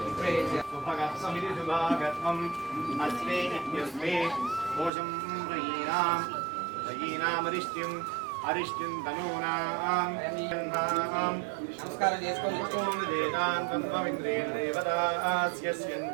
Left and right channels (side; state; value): left; drops out; at 4.9 s